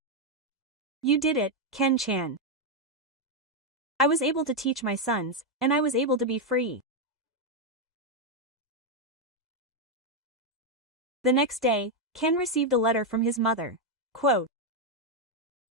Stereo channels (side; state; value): both; normal; correlation 0.02